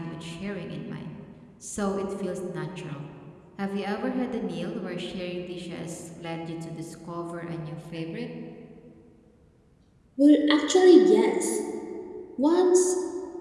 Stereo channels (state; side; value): identical; both; correlation 1.00